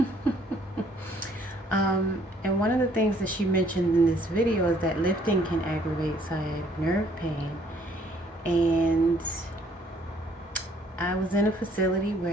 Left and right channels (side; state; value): both; normal; correlation 0.63